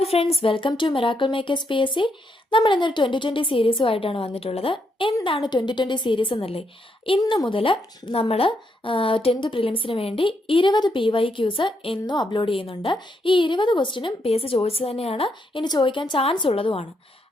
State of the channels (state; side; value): normal; both; correlation 0.78